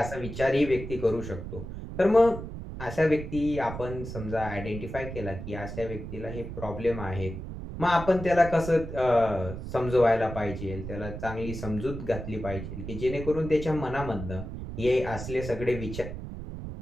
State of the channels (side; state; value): right; noise; rumble, 8 dB below the sound